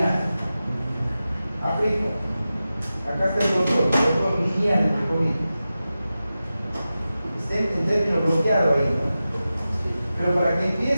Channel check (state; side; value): inverted; both; correlation -0.93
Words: Aplico. Acá está el rotor lineal, entre comillas. Está en término bloqueado ahí, ¿no? Pero para que